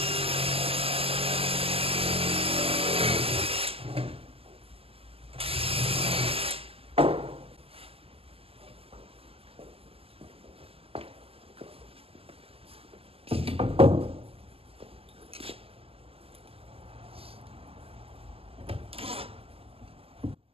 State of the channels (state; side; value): late; left; 0.28 ms